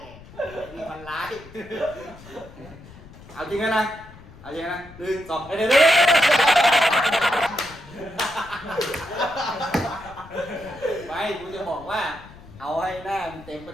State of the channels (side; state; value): left; noise; rumble, 19 dB below the sound